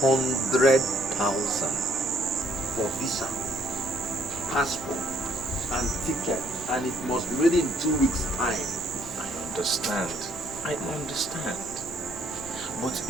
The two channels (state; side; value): normal; both; correlation 0.65